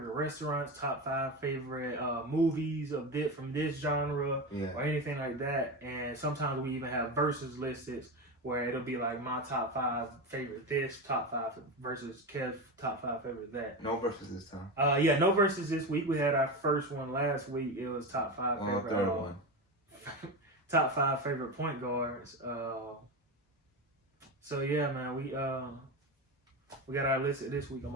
restaurants, top 5 favorite movies of this from this genre, or anything like that. And sometimes we even have versus listed where it'll be like my top 5 favorite this, top 5 versus Kev's top 5 favorite that. No versus this time. Yeah, no versus this week. We had our first one last week. It was top 5 favorite. Third one. Top 5 favorite point guards. So yeah, man, we got our list this week. I'm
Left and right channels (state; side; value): normal; both; correlation 0.19